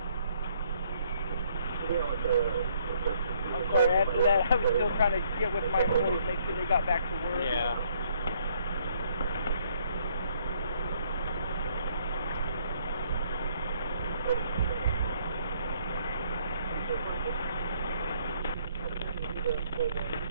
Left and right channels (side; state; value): both; inverted; correlation -0.66